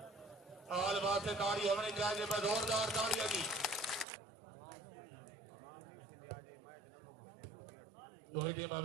और बात से ताड़ी होनी चाहिए। मैं जोरदार ताड़ियां जी। Rohit Sharma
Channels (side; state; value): left; drops out; at 4.0 s